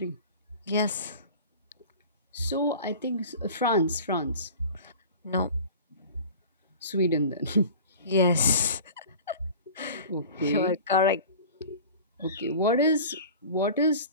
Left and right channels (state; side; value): inverted; both; correlation -0.39